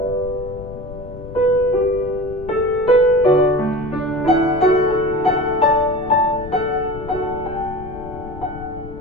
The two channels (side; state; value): left; noise; rumble, 13 dB below the sound